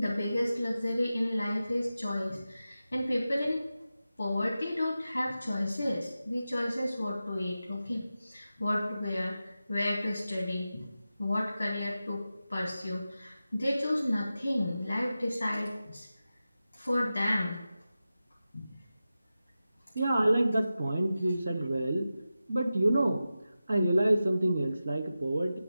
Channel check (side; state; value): both; inverted; correlation -0.93